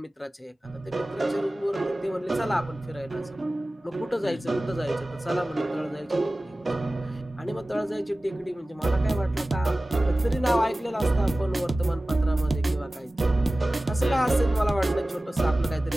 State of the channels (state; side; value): normal; both; correlation 0.97